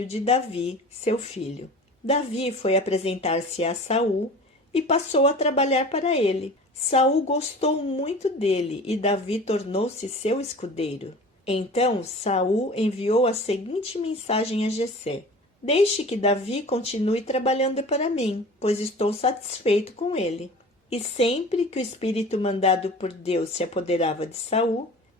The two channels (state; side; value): normal; both; correlation 0.40